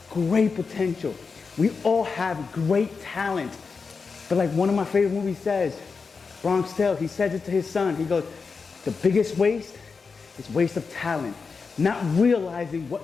great potential. We all have great talent. But like one of my favorite movies says, Bronx Tale, he says it to his son. He goes, the biggest waste is waste of talent. Not realizing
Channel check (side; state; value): right; quieter; 4.9 dB